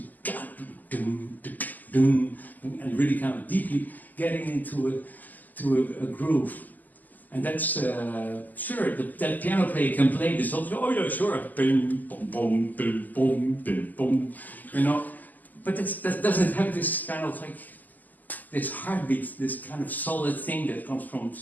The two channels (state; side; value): late; right; 0.083 ms